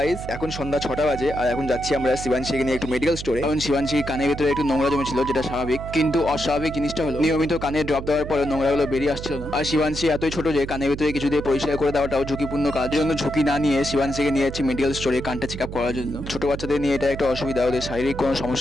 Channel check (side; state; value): right; noise; hum, 9 dB below the sound